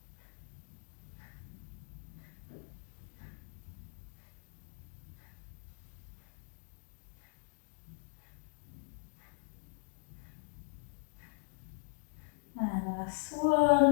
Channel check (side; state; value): right; silent; digital silence